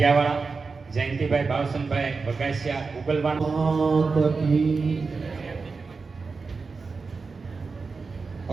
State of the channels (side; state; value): left; quieter; 4.5 dB